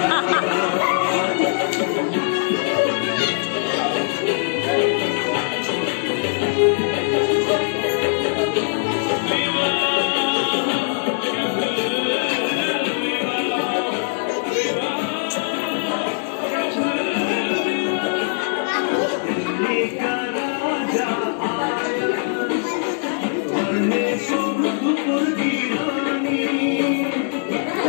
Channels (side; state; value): right; silent; 60 dB below the other